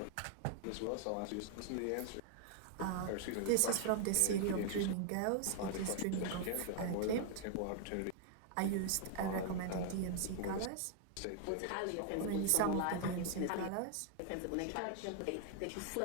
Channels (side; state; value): both; different; correlation 0.00